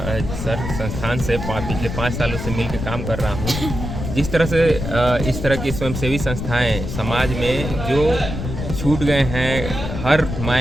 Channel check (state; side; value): noise; left; rumble, 5 dB below the sound